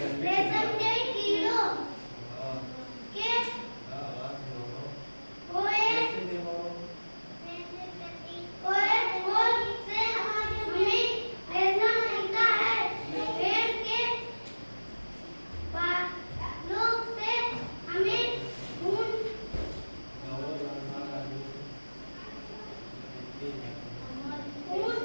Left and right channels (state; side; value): inverted; both; correlation -1.00